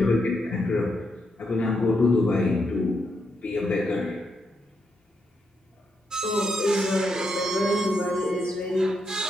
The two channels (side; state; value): both; normal; correlation 0.81